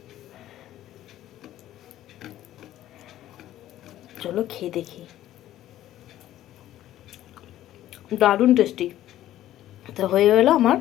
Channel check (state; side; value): quieter; right; 13.3 dB